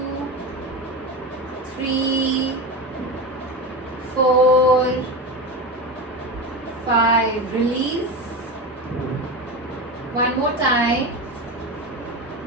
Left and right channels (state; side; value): normal; both; correlation 0.22